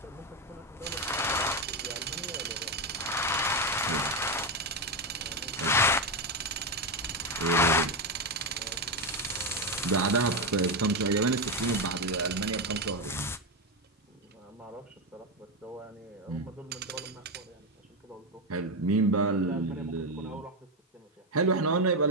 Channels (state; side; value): normal; both; correlation 0.09